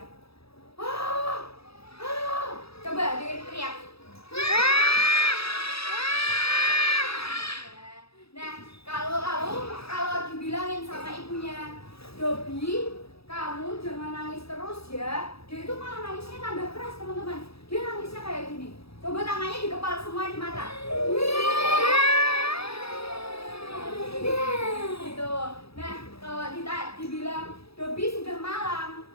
Coba dia teriak. Nah, kalau dibilangin sama ibunya, Dobi, kamu jangan nangis terus ya. Dia itu malah nangisnya tambah keras, teman-teman. Dia nangisnya kayak gini. Coba tangannya dikepal semua di mata. Gitu. Nah, kalau dibilang Dobi sudah malam,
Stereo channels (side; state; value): right; late; 0.77 ms